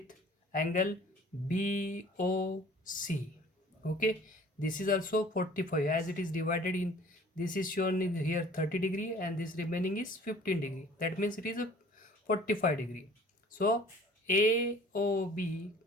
angle BOC. Okay, this is also 45, as it is divided in, this is shown in here 30 degree and this remaining is 15 degree. That means it is a 45 degree. So AOB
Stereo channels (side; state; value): both; normal; correlation 0.50